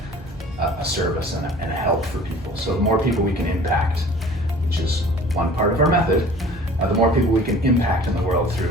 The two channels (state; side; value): normal; both; correlation 0.47